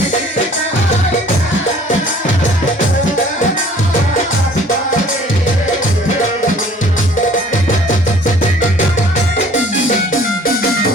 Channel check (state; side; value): normal; both; correlation 0.53